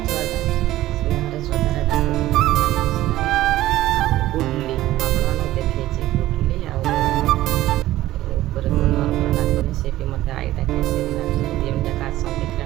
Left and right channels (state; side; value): quieter; left; 15.3 dB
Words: ଛୁଆଟା ସ୍ନେହରେ ଶ୍ରଦ୍ଧାରେ ଡାକୁଛି। ଆଉ ଗୁଡ଼ଲି ଆପଣମାନଙ୍କୁ ଦେଖେଇଛି, ଗୁଡ଼ଲି ଆଉ ଉପରେ ନର୍ମର ଡାକୁନି, ସେ ବି ମୋତେ ଆଈ ଡାକେ, ସେ ବି ଡାକେ। ଦୁଇ ଯାକ ଆସନ୍ତି